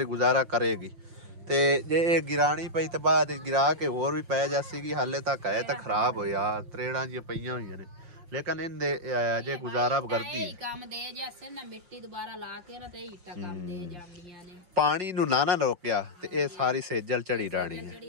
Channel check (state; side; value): late; left; 5.7 ms